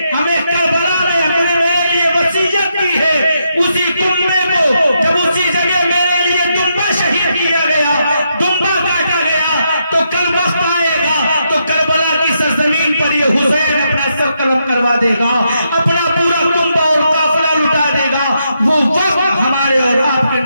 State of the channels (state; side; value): inverted; both; correlation -0.81